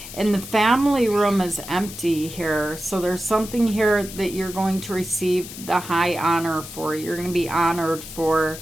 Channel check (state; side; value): noise; left; hiss, 13 dB below the sound